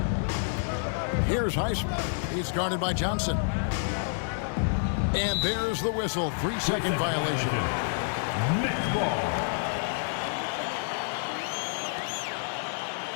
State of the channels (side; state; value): right; silent; digital silence